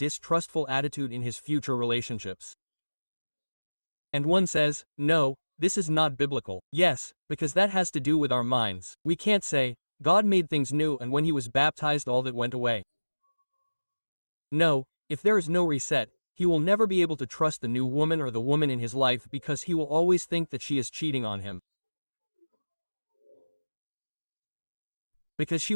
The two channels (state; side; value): inverted; both; correlation -1.00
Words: attitude in his future relationships. And one says, no, this is not biblical. Yes, because that has to do with our minds. We can't say, God made things new and when he was baptized all that went away. No, if there is no reset, he will never be able to trust the new woman or the woman in his life because he will always think that she is cheating on him. Because she